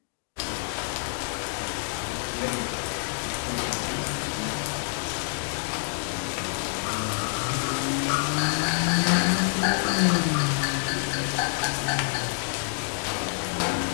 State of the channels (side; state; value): right; silent; 60 dB below the other